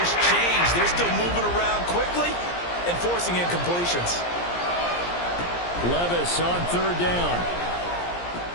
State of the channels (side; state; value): right; late; 17 ms